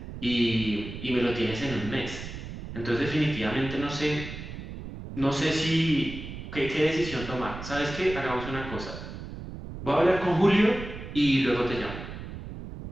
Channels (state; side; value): noise; right; rumble, 10 dB below the sound